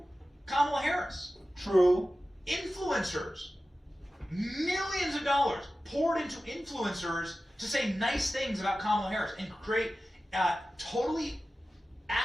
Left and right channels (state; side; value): normal; both; correlation 0.95